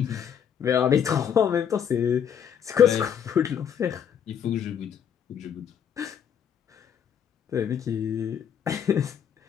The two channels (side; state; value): right; quieter; 8.3 dB